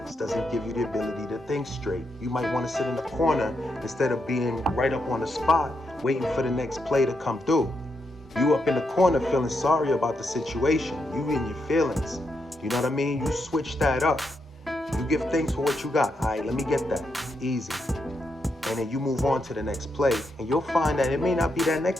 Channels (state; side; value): normal; both; correlation 0.82